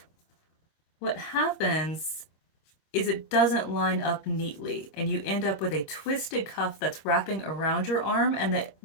what happens is it doesn't line up neatly, and you end up with a twisted cuff that's wrapping around your arm, and that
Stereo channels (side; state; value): right; late; 26 ms